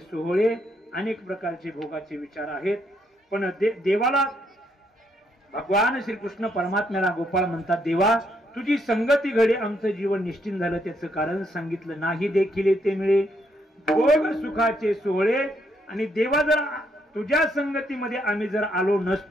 अनेक प्रकारचे भोगाचे विचार आहेत पण देवाला भगवान श्रीकृष्ण परमात्म्याला गोपाळ म्हणतात देवा तुझी संगती घडे आमचं जीवन निश्चिंत झालं. त्याचं कारण सांगितलं. नाही देखील ते मिळे भोग सुखाचे सोहळे. आणि देवा जर तुझ्या संगतीमध्ये आम्ही जर आलो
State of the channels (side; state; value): both; normal; correlation 0.74